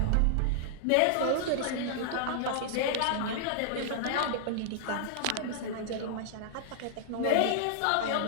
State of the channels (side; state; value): both; different; correlation -0.01